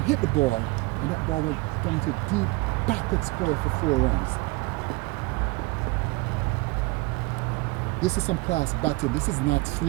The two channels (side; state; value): left; quieter; 24.2 dB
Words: to hit the ball, and that ball went down to deep backward square for 4 runs. This is some class batting. This is not